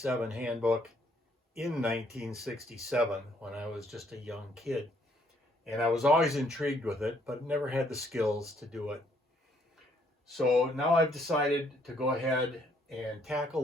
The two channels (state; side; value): normal; both; correlation 0.67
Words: handbook in 1967 when I was just a young kid. And I was always intrigued with it, but never had the skills to do it. So now I've decided to go ahead and